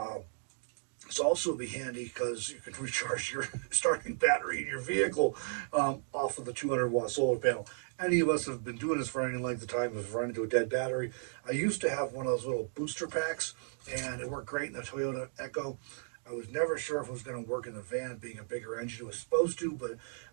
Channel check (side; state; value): left; silent; digital silence